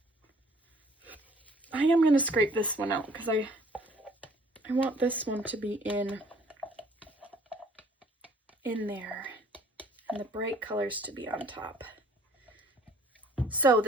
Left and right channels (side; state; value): both; normal; correlation 0.57